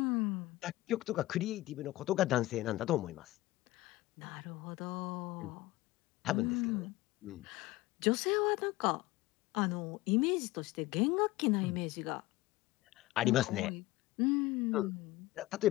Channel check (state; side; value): quieter; right; 18.0 dB